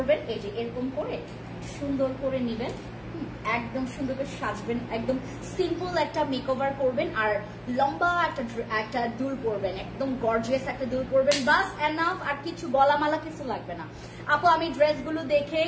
এই যে এরকম করে সুন্দর করে নিবেন, একদম সুন্দর করে সাজবেন, একদম সিম্পল একটা মেকওভার করবেন, আর লম্বা একটা দুল পরবেন, একদম গর্জিয়াস একটা দুল পরবেন, বাস এনাফ। আর কিছু গলামালা কিছু লাগবে না। আপু আমি ড্রেসগুলো দেখে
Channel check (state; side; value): identical; both; correlation 1.00